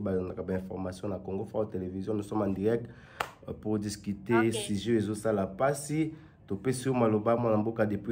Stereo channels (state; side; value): identical; both; correlation 1.00